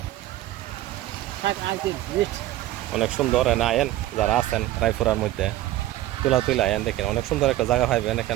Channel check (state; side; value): quieter; left; 14.8 dB